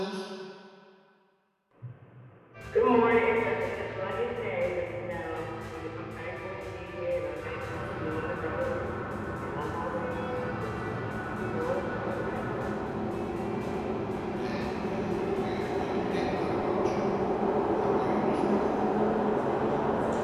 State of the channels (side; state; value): both; identical; correlation 1.00